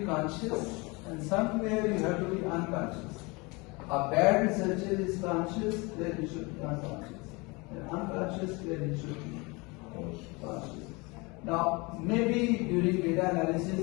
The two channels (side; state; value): right; quieter; 26.6 dB